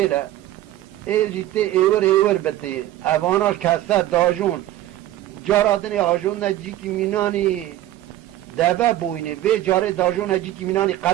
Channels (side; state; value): left; quieter; 14.0 dB